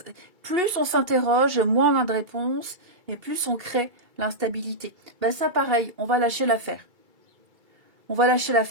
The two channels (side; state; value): left; late; 2.3 ms